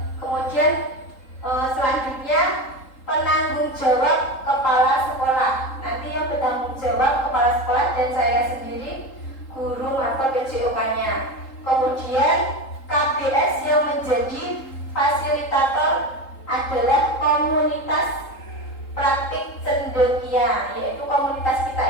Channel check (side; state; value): right; late; 3.8 ms